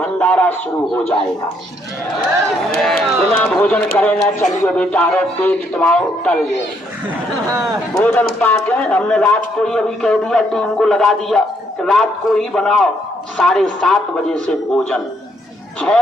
शुरू हो जाएगा। बिना भोजन करे ना चलिए बेटा, रो पेट तुम्हारा टल गए। भोजन पाके हमने रात को ही अभी कह दिया, टीम को लगा दिया कि रात को ही बनाओ। 7:30 बजे से भोजन,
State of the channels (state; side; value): normal; both; correlation 0.71